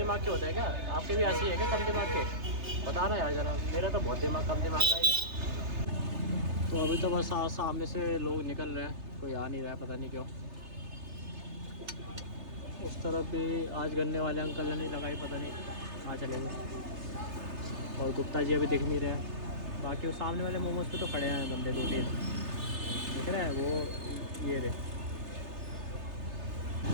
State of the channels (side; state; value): left; late; 3.3 ms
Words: के होते हैं क्या? आपके भी ऐसे ही है क्या कम दिमाग के? बताना यार ज़रा, मेरा तो बहुत दिमाग कम दिमाग का है। तो अभी तो बस सामने से लोग निकल रहे हैं, कोई आ नहीं रहा है, पता नहीं क्यों। उस तरफ भी आज गन्ने वाले अंकल ने नहीं लगाई, पता नहीं कहाँ चले गए। और गुप्ता जी अभी दिख नहीं रहे हैं। बाकी वो सामने वाले मोमोज पे तो खड़े हैं बंदे 2-3 दिख रहे हैं, वो ये रहे।